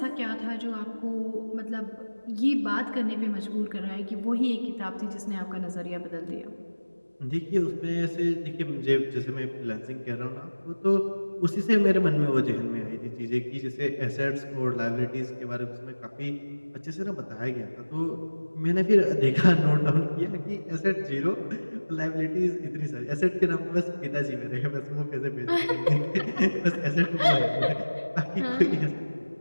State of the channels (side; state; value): both; inverted; correlation -1.00